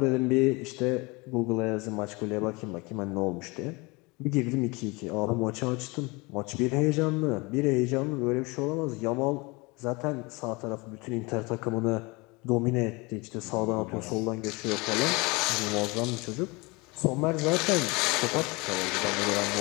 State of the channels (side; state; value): right; quieter; 26.0 dB